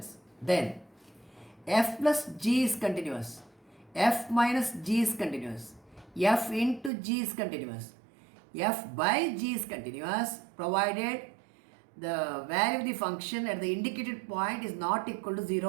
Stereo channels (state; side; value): drops out; left; at 6.9 s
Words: then f plus g is continuous, f minus g is continuous, f into g is continuous, f by g is continuous, provided the value of the function at the indicated point is not equal to